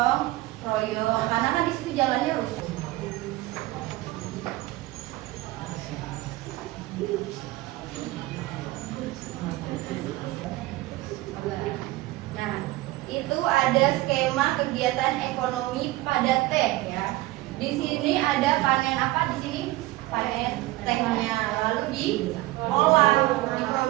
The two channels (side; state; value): left; quieter; 18.5 dB